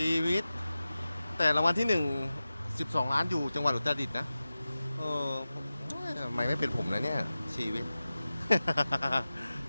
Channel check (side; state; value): both; inverted; correlation -0.95